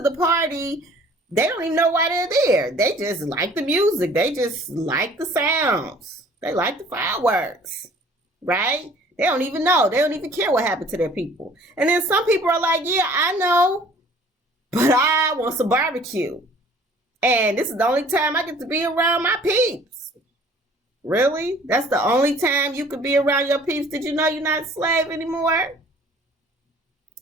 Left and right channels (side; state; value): both; normal; correlation 0.52